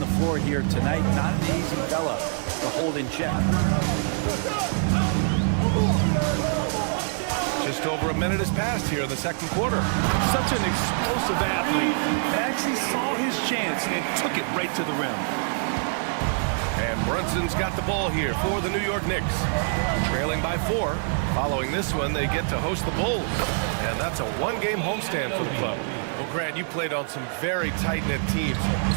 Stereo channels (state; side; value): silent; left; 62 dB below the other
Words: floor here tonight. Not an easy fella to hold in check. Just over a minute has passed here in the second quarter. Such an explosive athlete. Maxey saw his chance and took it right to the rim. And Brunson's got the ball here for the New York Knicks. Trailing by 4. Following this one, they get to host the Bulls. And that's a one-game homestand for the club. Well, Grant, you played on some very tight-knit teams.